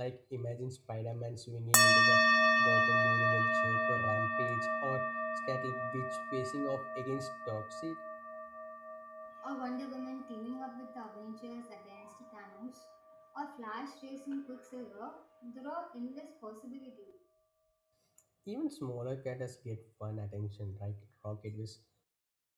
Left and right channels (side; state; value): both; identical; correlation 1.00